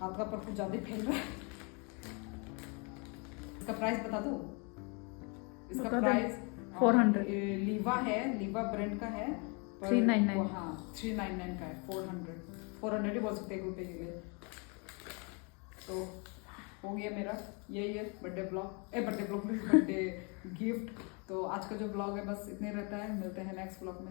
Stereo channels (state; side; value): quieter; right; 33.3 dB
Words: का पर कुछ ज्यादा फैल रहा है। इसका प्राइस बता दो इसका प्राइस 400 लीवा है लीवा ब्रांड का है 399 हाँ 399 का है 400 ही बोल सकते हैं रुपये के लिए। तो हो गया मेरा यही है बर्थडे गिफ्ट। तो आज का जो ब्लॉग है बस इतने रहता है मिलते हैं नेक्स्ट ब्लॉग